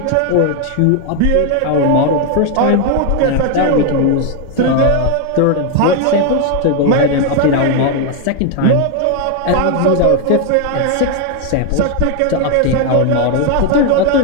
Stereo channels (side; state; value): both; different; correlation 0.01